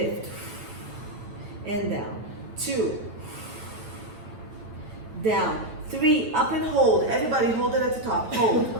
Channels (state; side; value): late; left; 9.1 ms